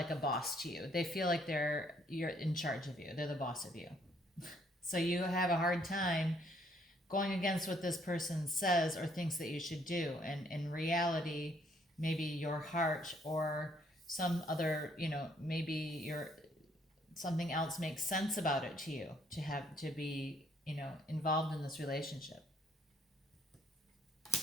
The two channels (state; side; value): normal; both; correlation 0.67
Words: a boss to you. They feel like you're in charge of you. They're the boss of you. So you have a hard time going against what this person says or thinks that you should do. And in reality, maybe your heart or some other, maybe something else makes sense about it to you to have to be, involved in this relationship.